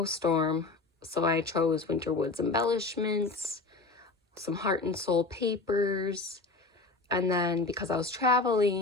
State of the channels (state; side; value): quieter; right; 3.6 dB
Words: so I chose Winter Woods embellishments, some heart and soul papers, and then because I was